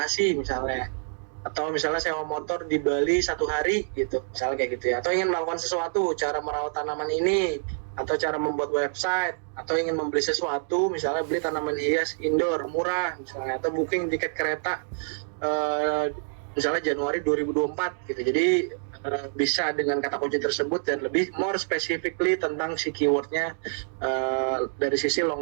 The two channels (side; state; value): left; silent; digital silence